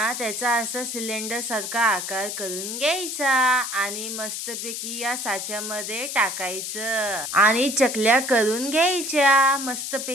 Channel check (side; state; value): left; noise; hiss, 5 dB below the sound